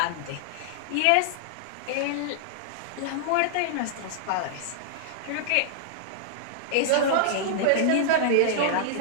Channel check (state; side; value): different; both; correlation -0.02